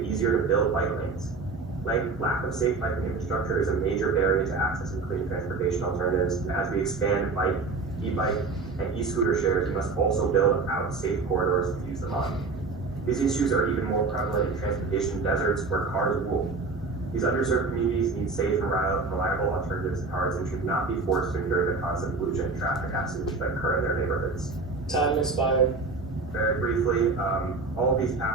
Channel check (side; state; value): left; quieter; 4.0 dB